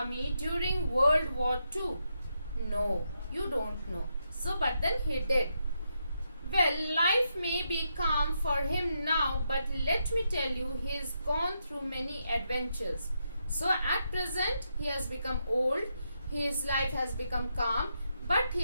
during World War II? No, you don't know. So, but then he did. Well, life may be calm for him now, but let me tell you, he has gone through many adventures. So, at present, he has become old, his life has become calm, but he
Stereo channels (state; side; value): inverted; both; correlation -0.82